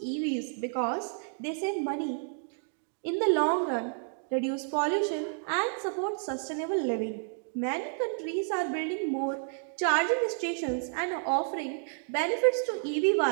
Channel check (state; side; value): silent; left; 57 dB below the other